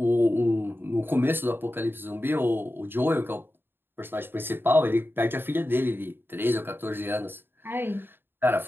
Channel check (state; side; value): late; left; 0.10 ms